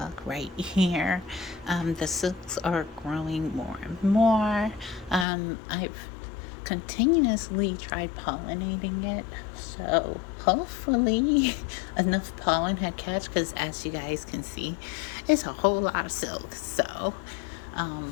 right here. The silks are growing more and more. I've continuously tried pollinating it, so hopefully enough pollen had catch. Because as you guys can see, it's a whole lot of silk. So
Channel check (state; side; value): drops out; right; at 5.2 s